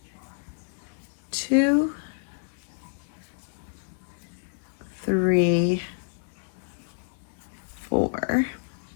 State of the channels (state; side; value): silent; right; 59 dB below the other